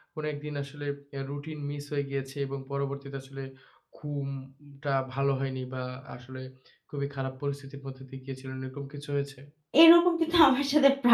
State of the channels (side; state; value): both; identical; correlation 1.00